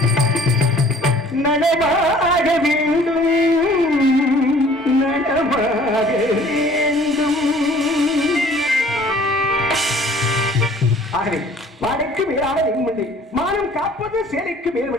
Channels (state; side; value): normal; both; correlation 0.53